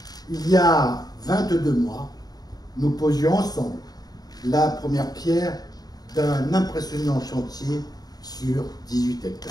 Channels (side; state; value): right; late; 0.19 ms